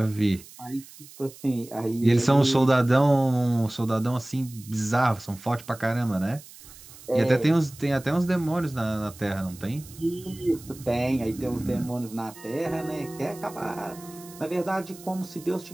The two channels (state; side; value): noise; right; hiss, 19 dB below the sound